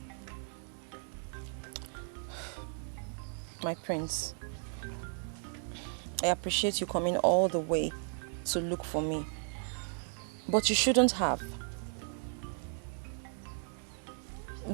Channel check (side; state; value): left; silent; 54 dB below the other